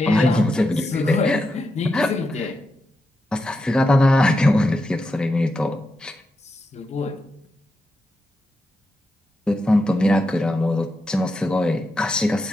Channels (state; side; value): normal; both; correlation 0.87